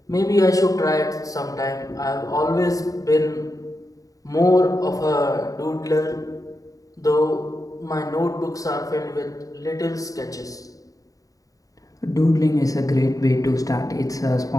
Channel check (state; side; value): late; right; 0.17 ms